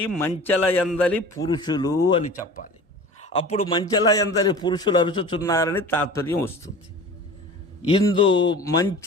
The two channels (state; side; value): normal; both; correlation 0.39